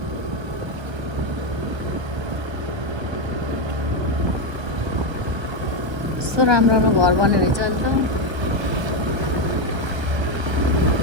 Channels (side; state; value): left; late; 1.3 ms